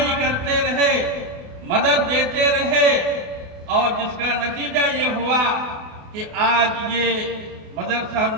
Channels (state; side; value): late; left; 28 ms